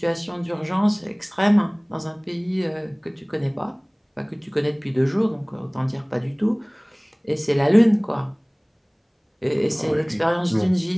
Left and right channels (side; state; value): both; identical; correlation 1.00